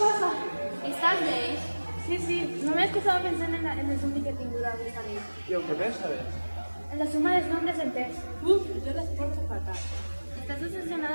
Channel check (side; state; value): both; inverted; correlation -1.00